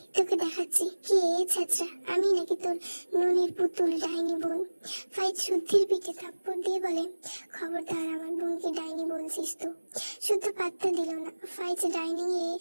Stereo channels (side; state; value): both; inverted; correlation -1.00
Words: তোকে দেখাচ্ছি কে ছেঁচড়া, আমি নাকি তোর ননির পুতুল ডাইনি বোন। ফাইজ শুদ্ধির পিঠে থাপ্পড় দিয়ে বলে, খবরদার আমার বোনকে ডাইনি বলছিস তো। শুদ্ধ পাত্তা দিল না। ফাইজ ডাইনিং এ